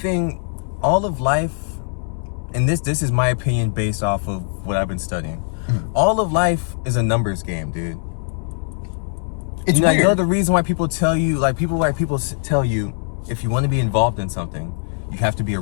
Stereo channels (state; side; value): silent; right; digital silence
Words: all of life, and this is my opinion based off of what I've been studying. All of life is a numbers game, dude. It's weird. You know the reason why people tell you, tell you, if you want to be involved in something, you have to be